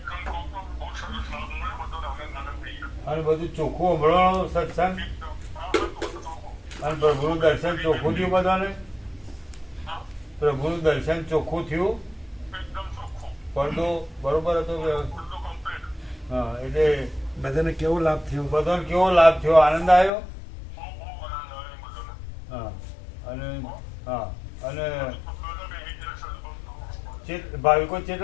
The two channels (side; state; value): right; drops out; at 20.1 s